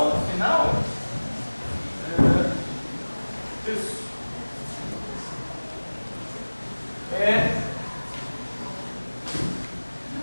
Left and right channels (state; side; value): inverted; both; correlation -1.00